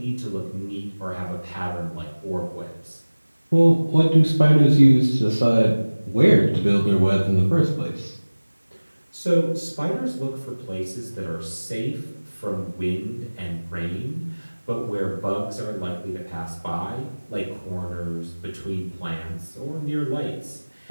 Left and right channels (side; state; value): both; inverted; correlation -1.00